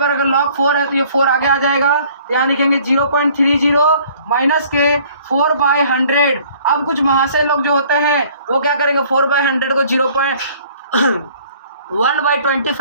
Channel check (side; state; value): both; inverted; correlation -0.56